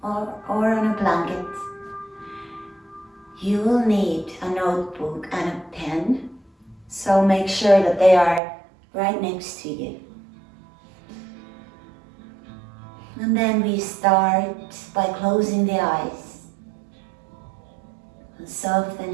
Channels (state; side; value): drops out; left; at 8.4 s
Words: or on a blanket. You will need a notebook and a pen, so make sure that they are right next to you. And then we start by closing the eyes and